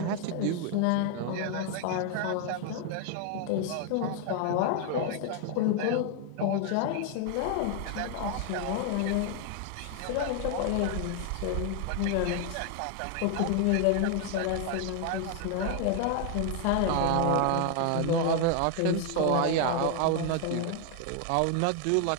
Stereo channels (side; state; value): both; different; correlation 0.00